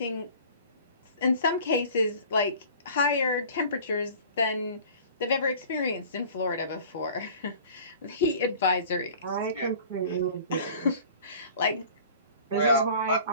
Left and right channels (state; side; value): inverted; both; correlation -0.45